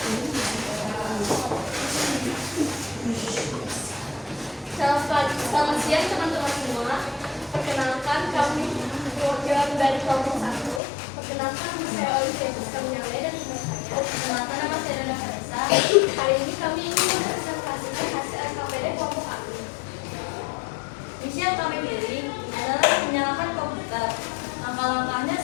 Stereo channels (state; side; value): drops out; right; at 10.8 s